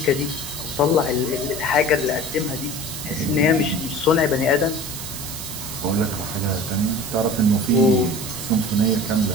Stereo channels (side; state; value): right; noise; hiss, 8 dB below the sound